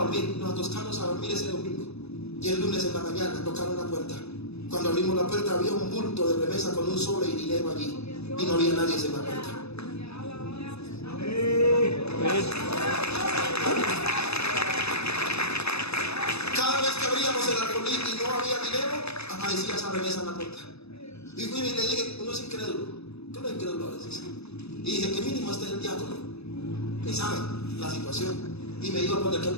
dormir. Nos acostamos a dormir ese domingo y el lunes en la mañana tocaron la puerta. Cuando abrimos la puerta había un bulto de remesa con un sobre y dinero allí y no había nadie en la puerta. Cada vez que abríamos el arbolí y no había dinero, aparecía esa remesa en la puerta. Y fui y le dije: uno es incrédulo, que uno es incrédulo a veces. Y dije: que mínimo este es el diácono, que sabe la situación. Y me iba a poner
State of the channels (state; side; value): late; right; 0.79 ms